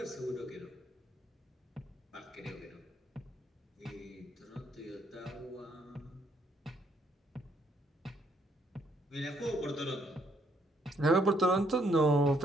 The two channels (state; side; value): normal; both; correlation 0.71